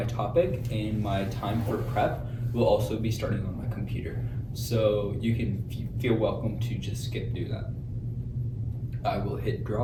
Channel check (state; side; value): identical; both; correlation 1.00